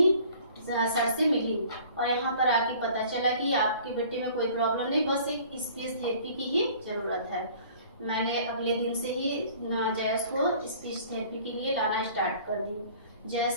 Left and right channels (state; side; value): inverted; both; correlation -0.50